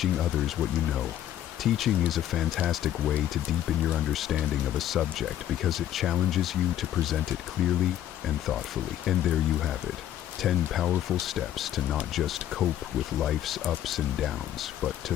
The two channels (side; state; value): right; quieter; 11.8 dB